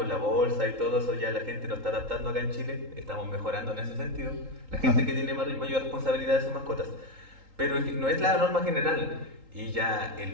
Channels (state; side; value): late; left; 3.8 ms